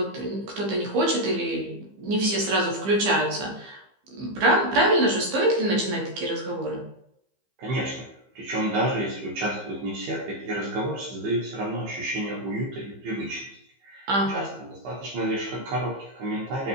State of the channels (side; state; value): left; late; 15 ms